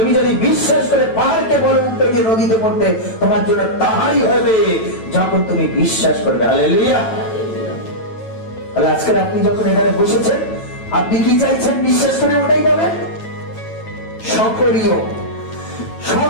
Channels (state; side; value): late; right; 9.0 ms